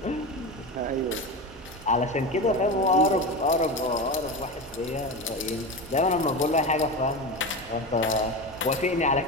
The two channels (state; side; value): normal; both; correlation 0.23